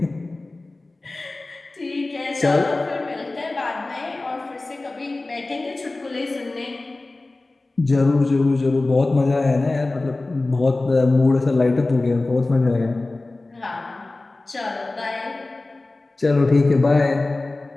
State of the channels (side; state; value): right; quieter; 3.1 dB